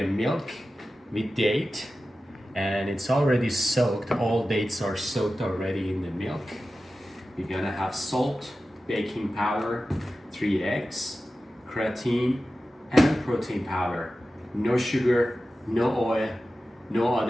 milk with date, and it's already soaked. All dates are soaked already in the milk. You're gonna have salt, baking powder, 3 eggs, creatine, and protein powder. No sugar, no oil, no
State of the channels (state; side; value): normal; both; correlation 0.94